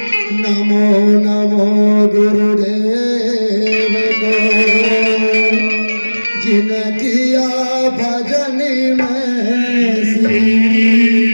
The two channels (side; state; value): both; inverted; correlation -1.00